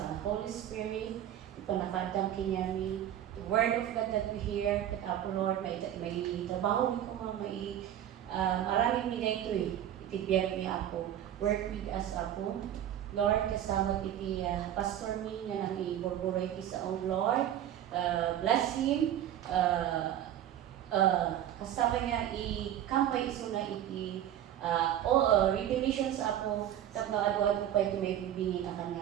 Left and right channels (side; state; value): left; quieter; 11.2 dB